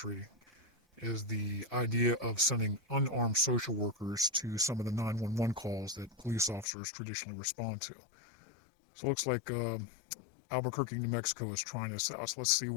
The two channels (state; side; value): drops out; right; at 6.7 s